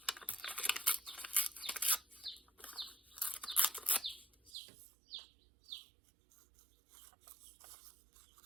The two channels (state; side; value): drops out; left; at 4.5 s